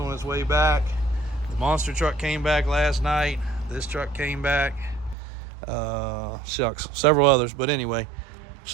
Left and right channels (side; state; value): left; drops out; at 5.2 s